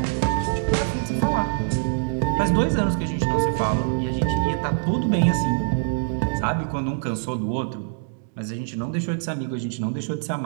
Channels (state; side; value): silent; left; digital silence